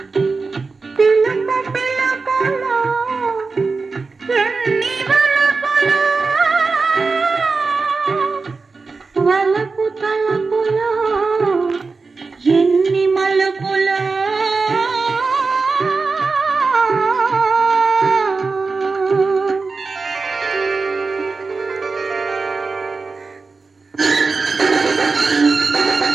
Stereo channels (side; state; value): left; quieter; 4.2 dB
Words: వలపు తలపులో ఎన్ని మలుపులో